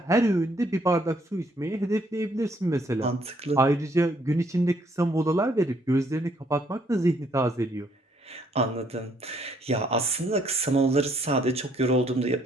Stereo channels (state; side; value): normal; both; correlation 0.67